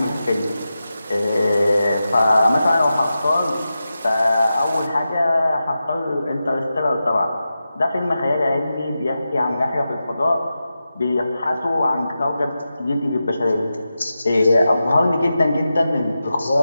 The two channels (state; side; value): inverted; both; correlation -0.91